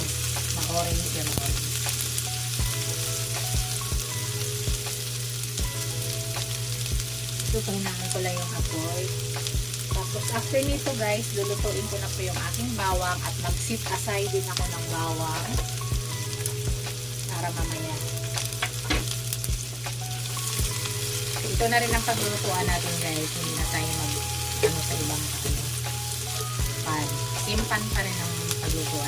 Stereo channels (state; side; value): identical; both; correlation 1.00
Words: Ma-orange yan. Tutunahan ko lang yung apoy. Tapos after nito guys, lulutuin ko na po yung aking bawang at mag-set aside din ako ng bawang para mamaya. Ito na rin ang paglulutuan natin guys. Hindi na tayo sa ibang pan. Same pan pa rin ang